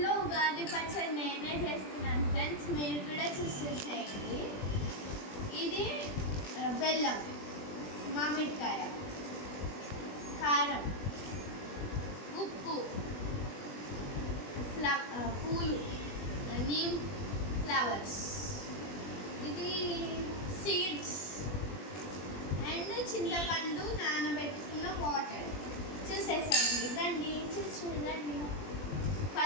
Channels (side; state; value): right; late; 20 ms